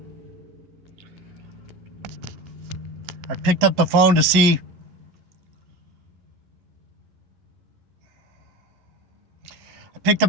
I picked up the phone to see.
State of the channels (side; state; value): left; late; 11 ms